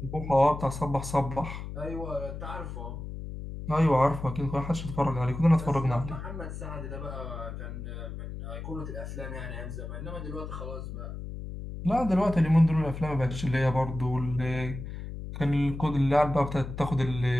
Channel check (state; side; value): noise; left; hum, 8 dB below the sound